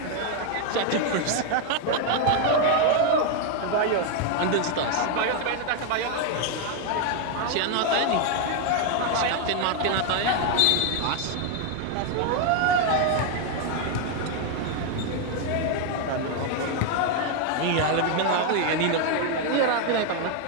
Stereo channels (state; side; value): different; both; correlation 0.01